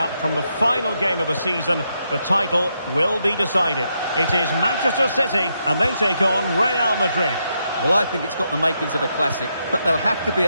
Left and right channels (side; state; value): both; inverted; correlation -0.80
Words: from the final game of the season. The title will be decided. It is Manchester City and they take on Real Madrid. Well, I think it's got the makings of a classic, but they'll have to be